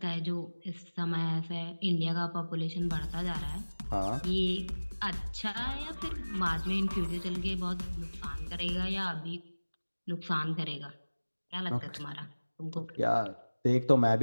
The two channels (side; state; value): both; inverted; correlation -1.00